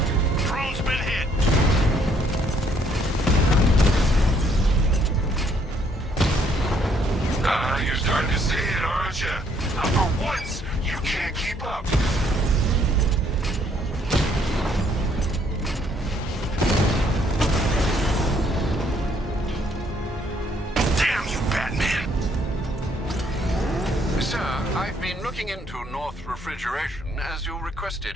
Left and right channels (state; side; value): normal; both; correlation 0.67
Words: Drone's been hit! You're starting to see it, aren't you? Now, for once, you can't keep up. Damn you, Batman! Sir, I've been looking into North Refrigeration as you